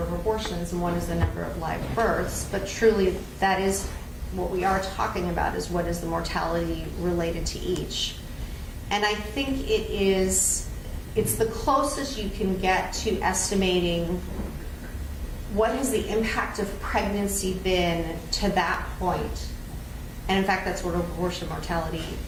of abortions and one is the number of live births, but truly that is what we are talking about, is what is the mortality related to each. And I think it's the closest you can get to estimating what has the impact of pregnancy been to that point. And in fact, that's what abortion mortality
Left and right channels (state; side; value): identical; both; correlation 1.00